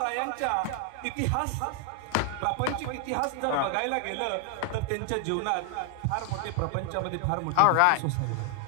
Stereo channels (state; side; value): different; both; correlation 0.00